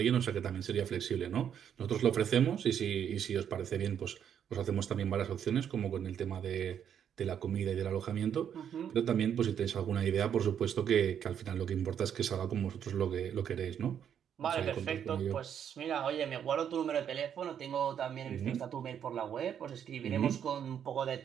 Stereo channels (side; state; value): left; quieter; 8.8 dB